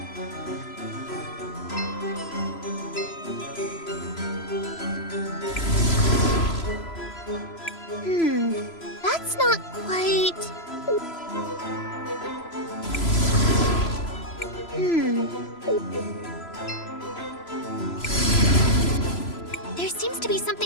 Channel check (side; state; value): right; late; 3.0 ms